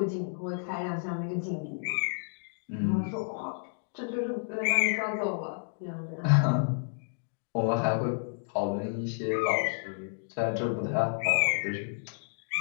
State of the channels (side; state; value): right; silent; digital silence